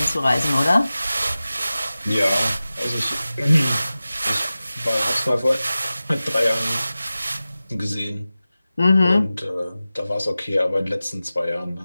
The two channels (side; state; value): both; inverted; correlation -0.96